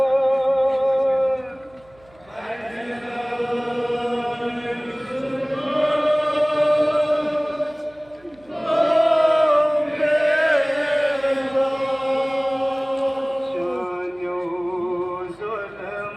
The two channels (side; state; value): right; noise; hum, 29 dB below the sound